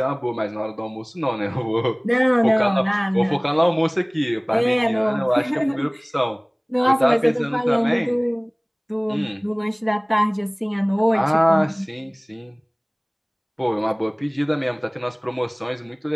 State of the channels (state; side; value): identical; both; correlation 1.00